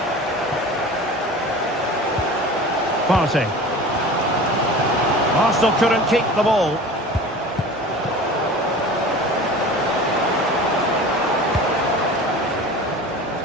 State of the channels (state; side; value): normal; both; correlation 0.38